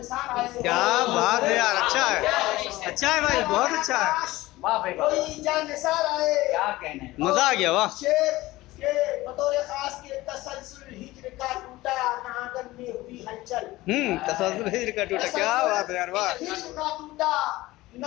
आए। क्या बात है यार, अच्छा है भाई, बहुत अच्छा है, वाह भाई वाह कोई जानसार आए। क्या कहने हैं। मजा आ गया, वाह। शेर के बतौर खास के तसलसल हिज्र का टूटा नागन में हुई हलचल। तसल्सल हिज्र का टूटा, क्या बात है यार, वाह। हिज्र का टूटा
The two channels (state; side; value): quieter; right; 18.4 dB